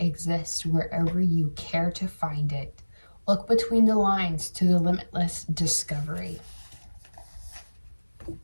wherever you care to find it. Look between the lines to the limitless discovery.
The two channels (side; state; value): both; inverted; correlation -1.00